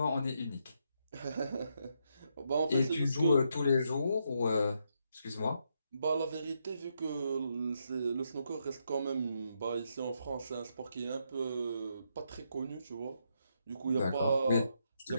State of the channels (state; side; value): inverted; both; correlation -0.79